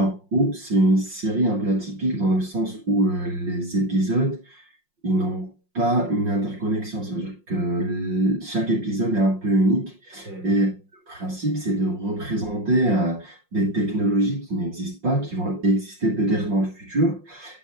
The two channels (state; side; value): late; left; 5.6 ms